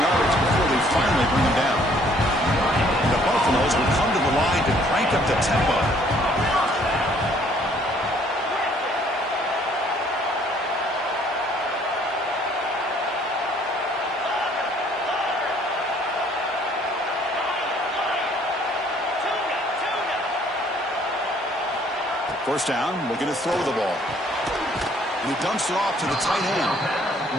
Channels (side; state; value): both; normal; correlation 0.61